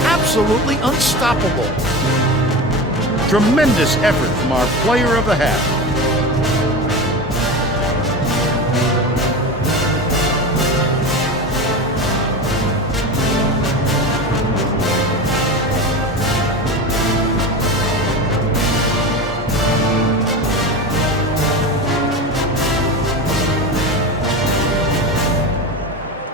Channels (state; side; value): normal; both; correlation 0.25